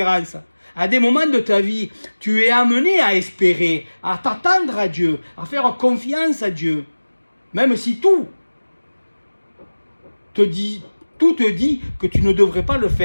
À des moments de ta vie, tu es amené à espérer, à t'attendre à Dieu, à faire confiance à Dieu. Même si tout te dit que tu ne devrais pas le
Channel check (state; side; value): inverted; both; correlation -1.00